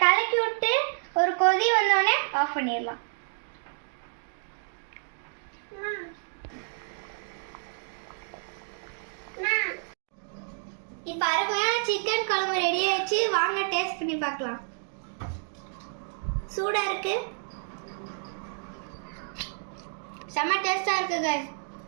கலக்கி விட்டு ஒரு கொதி வந்தோடனே ஆஃப் பண்ணிடலாம். இப்போ அருமையான சிக்கன் குழம்பு ரெடி ஆயிடுச்சு. வாங்க டேஸ்ட் பண்ணி பார்க்கலாம். சூடா இருக்கு, செம்ம டேஸ்டா இருக்கு கைஸ்.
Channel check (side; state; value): left; silent; digital silence